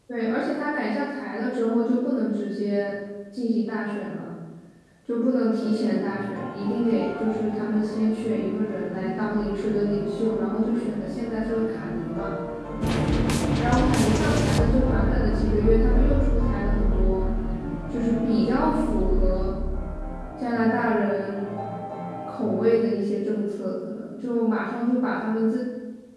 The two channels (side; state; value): both; identical; correlation 1.00